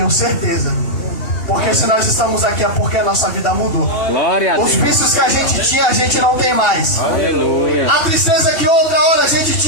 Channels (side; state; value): right; late; 2.8 ms